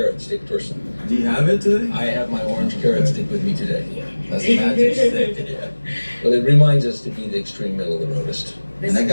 stick person. Do you have it today? I have my orange carrot stick with me today. That's a magic stick. Yeah. Well, it reminds us to be the extreme middle of the roadist. And I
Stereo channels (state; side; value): inverted; both; correlation -1.00